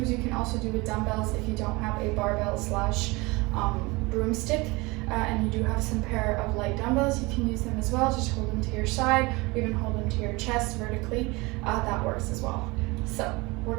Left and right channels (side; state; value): left; quieter; 24.4 dB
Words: you can also do with dumbbells if you don't have a barbell slash broomstick, and you do have some pair of light dumbbells. You can use them as well. Just hold them to your side, or even hold them to your chest vertically. That works as well. So we're